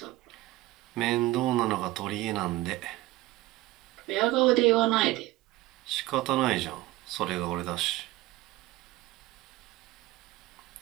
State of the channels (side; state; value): left; quieter; 17.7 dB